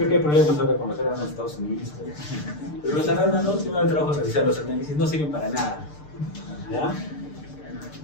que hay problemas ahora con los arándanos en Estados Unidos. Pero los arándanos, si me da trabajo revisar los análisis, no sirven para nada. ¿Ya?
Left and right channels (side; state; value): right; late; 6.7 ms